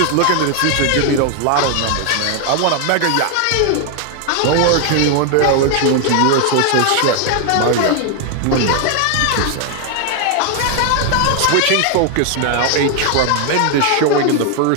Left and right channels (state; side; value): different; both; correlation 0.00